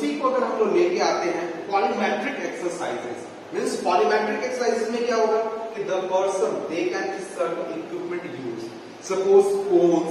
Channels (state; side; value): identical; both; correlation 1.00